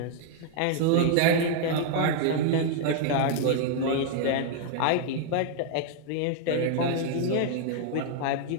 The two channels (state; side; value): different; both; correlation 0.00